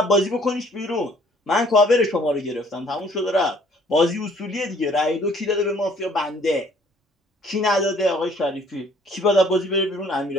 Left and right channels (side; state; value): both; normal; correlation 0.59